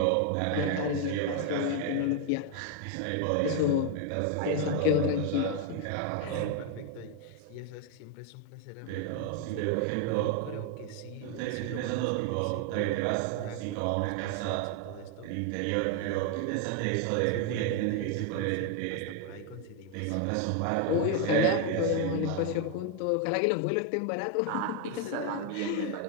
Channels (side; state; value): both; different; correlation 0.01